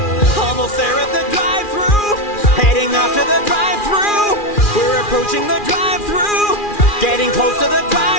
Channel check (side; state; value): right; late; 2.4 ms